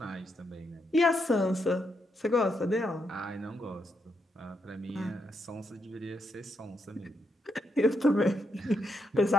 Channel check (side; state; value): both; normal; correlation 0.80